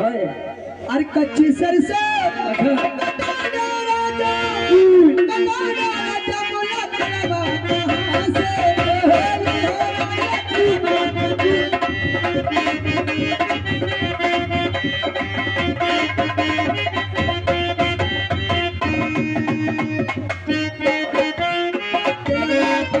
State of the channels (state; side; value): identical; both; correlation 1.00